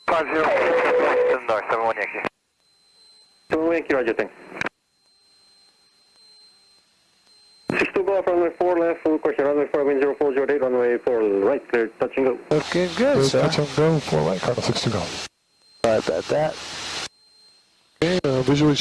50, north, 71 Yankee. 71 Yankee, roger, thanks. 62 Golf, runway 4 left, full question, runway 4, wind 0408, runway 4 right, clear, touch and go. Okay, good, sir. Touch and go, 4 right, Cardinal 62 Golf. Sorry about that. Okay, visually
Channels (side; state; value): both; identical; correlation 1.00